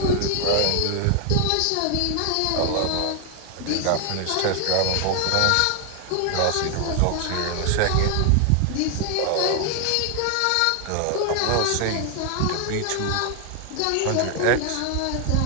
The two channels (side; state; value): both; different; correlation 0.00